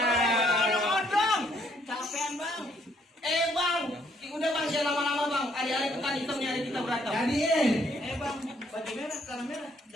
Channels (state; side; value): normal; both; correlation 0.68